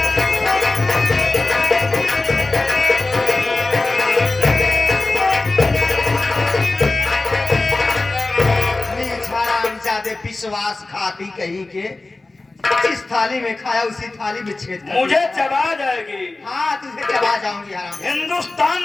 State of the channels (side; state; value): right; quieter; 3.2 dB